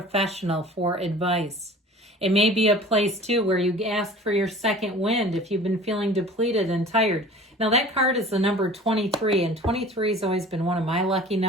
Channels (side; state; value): both; normal; correlation 0.43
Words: for advice. It may be a place too where you ask for your second wind if you've been feeling depleted and tired. Now that card is the number 23, and 23 has always been one of my lucky